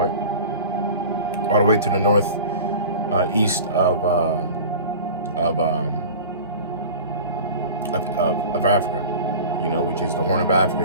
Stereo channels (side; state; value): both; inverted; correlation -0.37